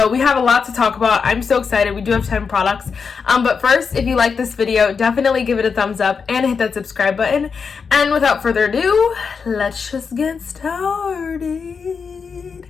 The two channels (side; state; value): right; quieter; 5.7 dB